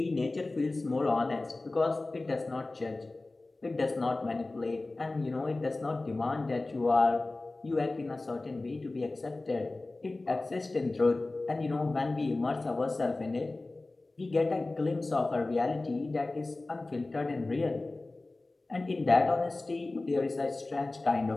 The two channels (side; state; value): right; quieter; 3.1 dB